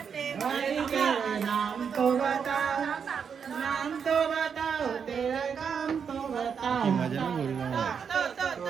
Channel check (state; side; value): quieter; left; 6.8 dB